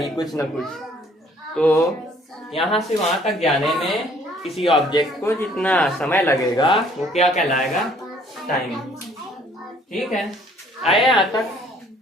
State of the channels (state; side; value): normal; both; correlation 0.59